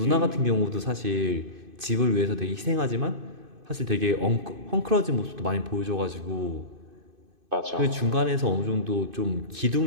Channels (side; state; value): left; late; 2.5 ms